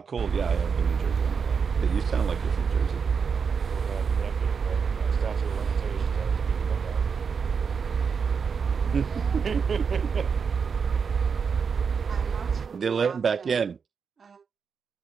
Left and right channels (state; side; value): quieter; left; 6.0 dB